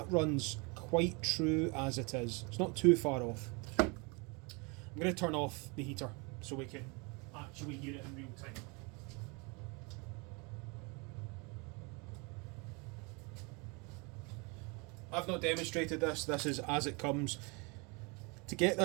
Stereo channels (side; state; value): left; quieter; 30.1 dB